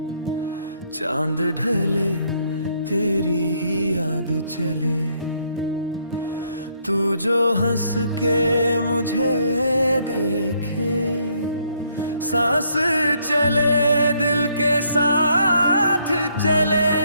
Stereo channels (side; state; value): both; inverted; correlation -0.70